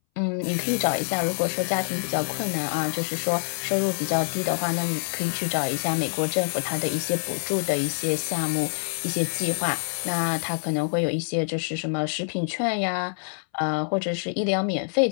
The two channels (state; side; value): silent; right; 61 dB below the other